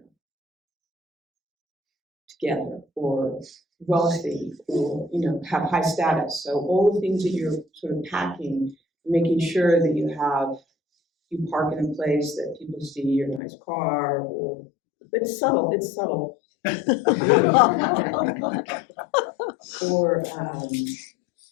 together, or wealthy, or, have high status. So all the things that you're sort of packing, making sure that you park in a place that people see your nice car, but it's subtle.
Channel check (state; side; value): drops out; right; at 13.4 s